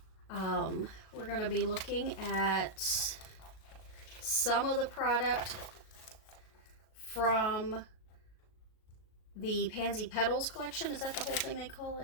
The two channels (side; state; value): right; late; 38 ms